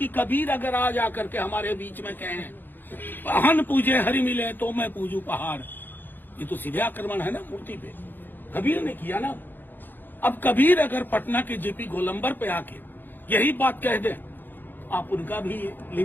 कबीर अगर आज आकर के हमारे बीच में कहें हन पूजे हरि मिले तो मैं पूजू पहाड़, ये तो सीधे आक्रमण है ना मूर्ति पे। कबीर ने किया ना। अब कबीर अगर पटना के जेपी गोलंबर पे आके यही बात कह दें, आप उनका भी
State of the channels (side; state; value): right; late; 0.091 ms